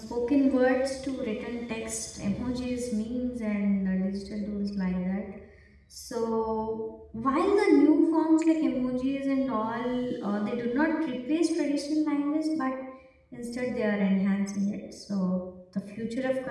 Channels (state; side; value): identical; both; correlation 1.00